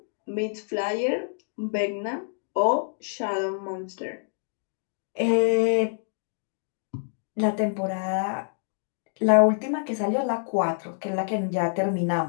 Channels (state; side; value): silent; right; digital silence